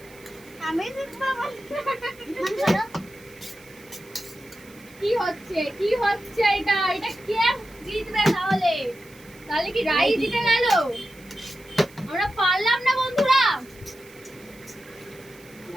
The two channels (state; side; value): noise; right; hiss, 24 dB below the sound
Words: আমি বাবা কি হচ্ছে এটা এটা কে জিতবে তাহলে তাহলে কি রাই জিতে গেল আমরা পারলাম না বন্ধুরা